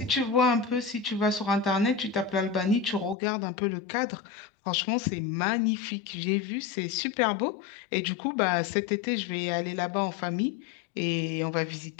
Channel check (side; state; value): right; drops out; at 3.2 s